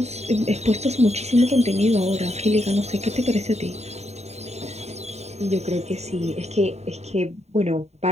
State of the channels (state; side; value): late; left; 0.32 ms